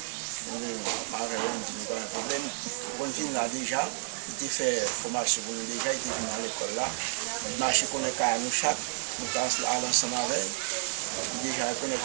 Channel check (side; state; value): left; silent; digital silence